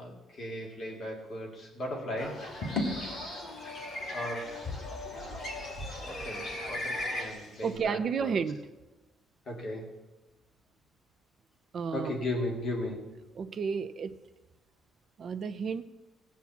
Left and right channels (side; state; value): both; normal; correlation 0.68